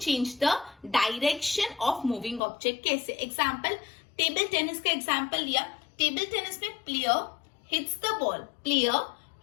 the direction of moving object. कैसे? एग्जाम्पल, टेबल टेनिस का एग्जाम्पल लिया. टेबल टेनिस में player hits the ball, player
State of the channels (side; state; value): right; drops out; at 2.4 s